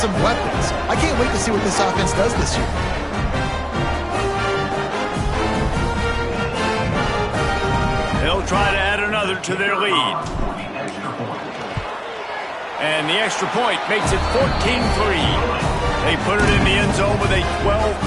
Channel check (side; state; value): both; identical; correlation 1.00